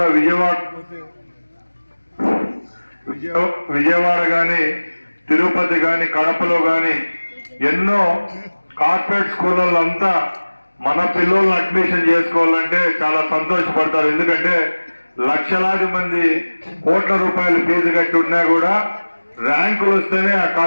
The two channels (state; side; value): inverted; both; correlation -1.00